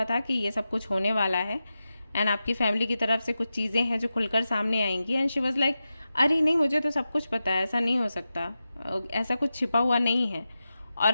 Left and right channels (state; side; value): inverted; both; correlation -0.92